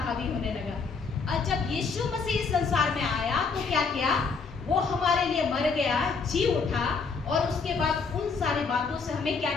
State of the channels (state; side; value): quieter; right; 4.9 dB